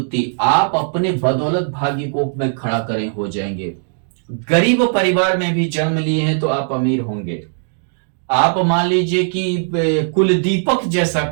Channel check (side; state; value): left; silent; digital silence